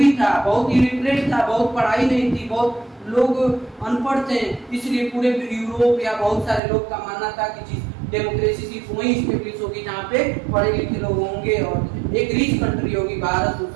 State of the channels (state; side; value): drops out; left; at 6.6 s